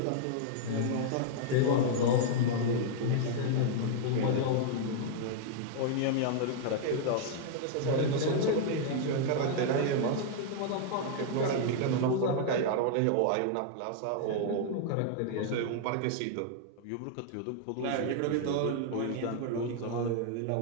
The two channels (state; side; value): different; both; correlation -0.01